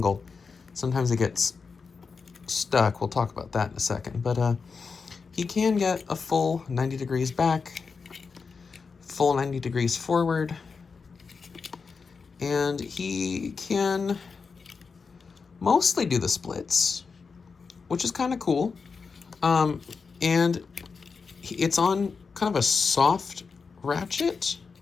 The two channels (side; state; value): right; quieter; 5.1 dB